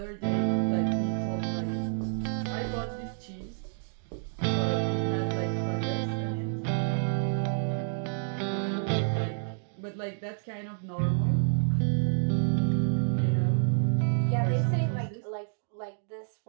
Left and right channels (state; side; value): silent; left; digital silence